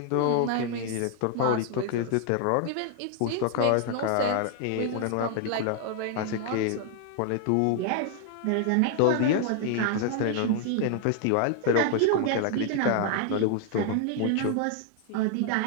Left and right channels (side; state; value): both; different; correlation 0.00